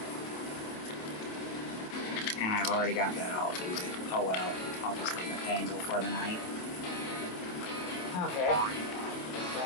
And I've already got that all booted. Oh well, I'll just leave it dangle for the night. Okay.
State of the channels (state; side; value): late; right; 27 ms